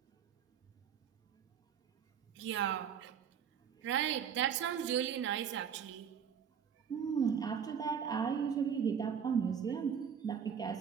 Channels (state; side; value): quieter; left; 7.7 dB